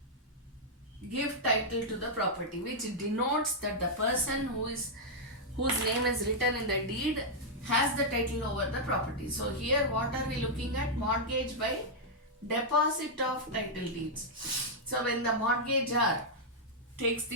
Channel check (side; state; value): both; normal; correlation -0.05